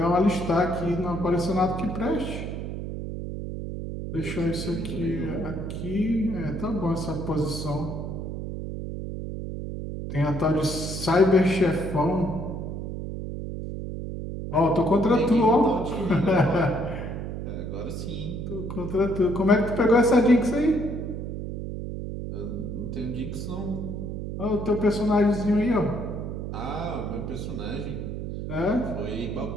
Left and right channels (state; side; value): noise; right; hum, 6 dB below the sound